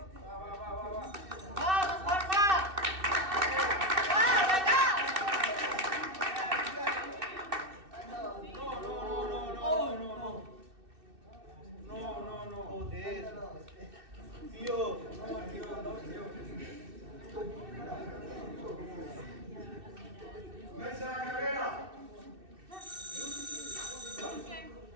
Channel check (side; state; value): left; late; 2.6 ms